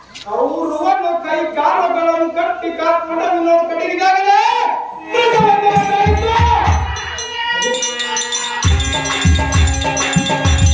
ಕೌರವನು ಕೈ ಕಾಲುಗಳನ್ನು ಕಟ್ಟಿ ಕಾಲ್ಪಡವಿನ ಕಡೆಗಿದಾಗಲೇ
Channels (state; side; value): identical; both; correlation 1.00